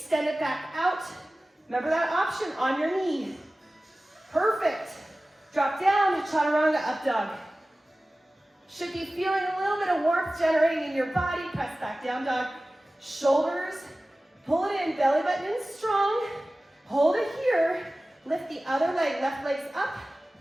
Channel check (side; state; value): both; normal; correlation 0.97